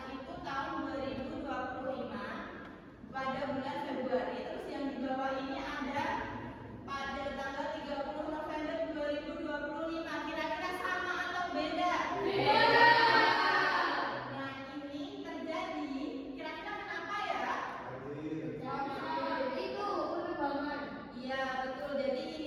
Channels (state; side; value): identical; both; correlation 1.00